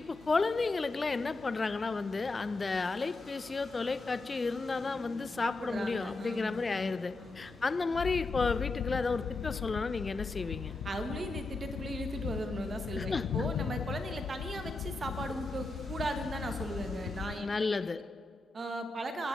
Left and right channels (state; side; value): quieter; right; 3.2 dB